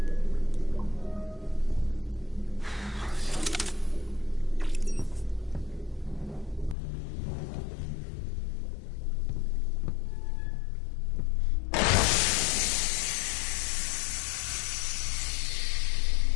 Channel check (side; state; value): right; drops out; at 6.8 s